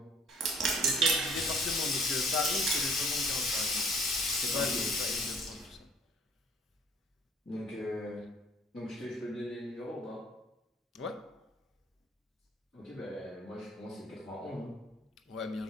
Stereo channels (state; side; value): normal; both; correlation 0.57